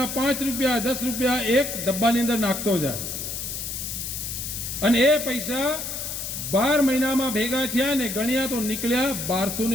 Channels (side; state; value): left; noise; hiss, 5 dB below the sound